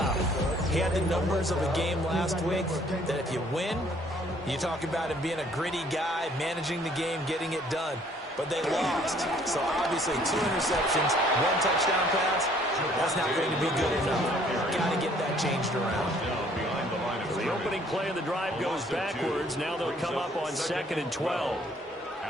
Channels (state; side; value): normal; both; correlation 0.60